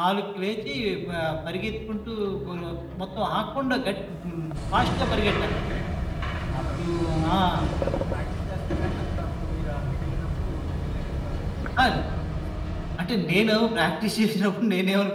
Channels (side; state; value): both; identical; correlation 1.00